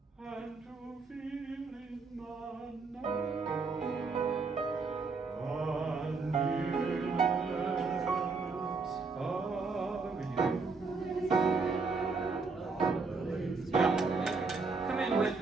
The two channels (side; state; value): left; quieter; 4.3 dB